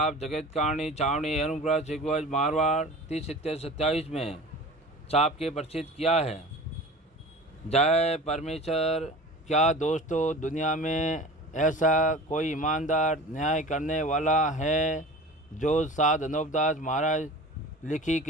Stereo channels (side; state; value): both; normal; correlation 0.38